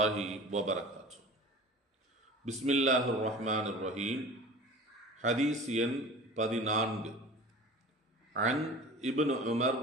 வபரகாத்து. பிஸ்மில்லாஹிர் ரஹ்மானிர் ரஹீம். ஹதீஸ் எண் 14. அன் இப்னு உமர்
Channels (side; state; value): both; normal; correlation 0.39